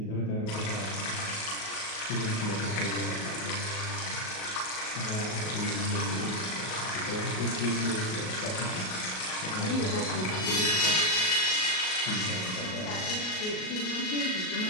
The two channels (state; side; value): late; right; 38 ms